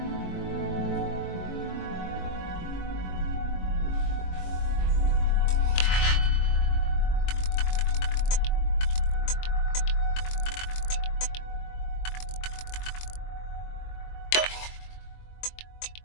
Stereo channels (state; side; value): late; right; 22 ms